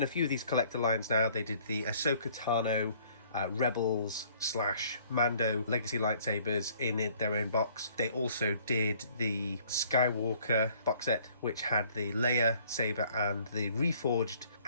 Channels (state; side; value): inverted; both; correlation -0.58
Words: a few of these collector lines now. They did the Ahsoka Tano Rebels / Mando Legacy lightsabers in their own box. They also did the Skywalker box set, which had the Leia saber and the reforged